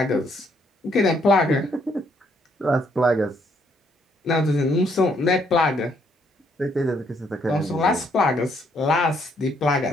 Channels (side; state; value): both; normal; correlation 0.70